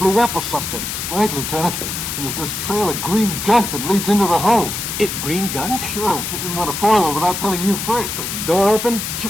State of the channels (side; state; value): left; noise; hiss, 4 dB below the sound